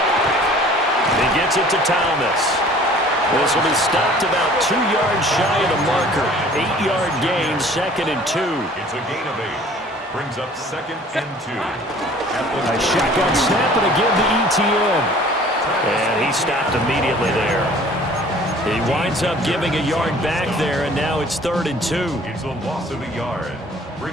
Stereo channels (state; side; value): normal; both; correlation 0.51